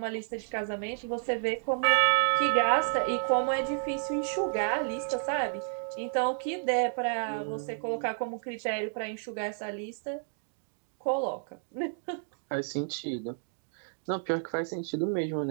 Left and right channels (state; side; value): silent; left; digital silence